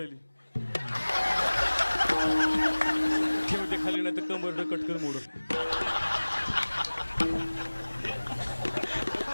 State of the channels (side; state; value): both; inverted; correlation -1.00